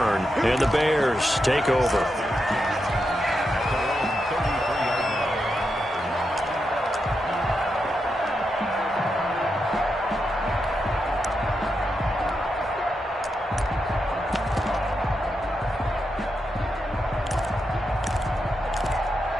and the Bears take over.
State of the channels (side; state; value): both; normal; correlation 0.85